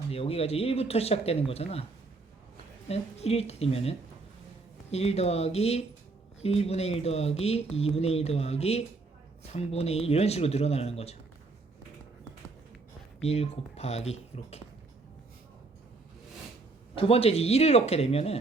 여기가 이제 1부터 시작되는 거잖아. 1일 때 되면은 1 더하기 1분의 1 더하기 2분의 1 더하기 3분의 1 이런 식으로 늘어나는 거죠. 1 곱하기 이렇게. 두 번째 이제 1을 넣게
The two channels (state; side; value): quieter; left; 3.7 dB